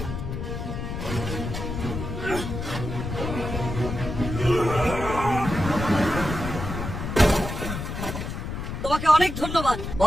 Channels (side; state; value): left; noise; rumble, 5 dB below the sound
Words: তোমাকে অনেক ধন্যবাদ।